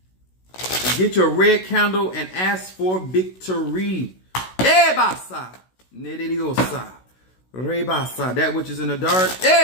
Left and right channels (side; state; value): right; late; 16 ms